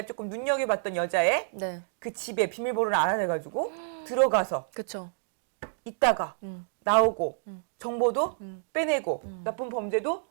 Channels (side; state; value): left; silent; digital silence